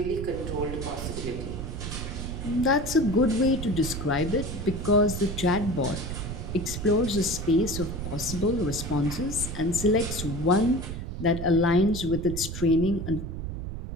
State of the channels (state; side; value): noise; right; rumble, 6 dB below the sound